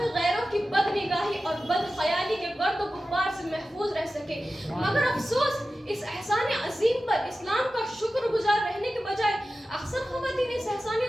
غیروں کی بد نگاہی اور بد خیالی کے گرد و غبار سے محفوظ رہ سکے مگر افسوس اس احسان عظیم پر اسلام کا شکر گزار رہنے کے بجائے اکثر خواتین اس احسان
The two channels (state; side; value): normal; both; correlation 0.94